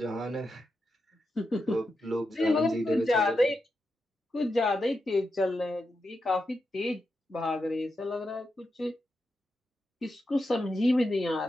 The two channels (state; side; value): normal; both; correlation 0.87